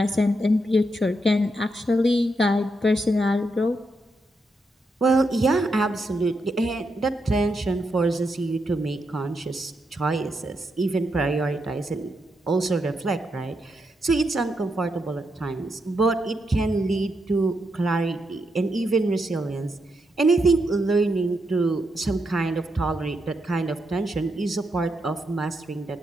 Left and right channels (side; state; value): both; normal; correlation 0.82